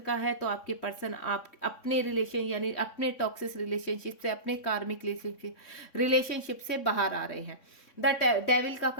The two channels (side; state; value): right; late; 3.6 ms